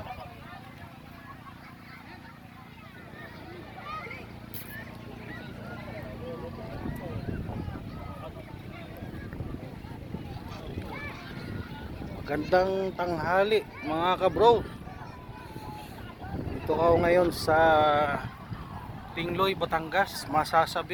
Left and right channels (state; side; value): identical; both; correlation 1.00